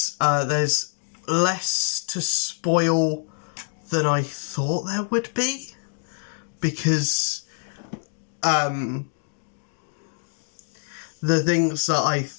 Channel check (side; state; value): right; silent; 61 dB below the other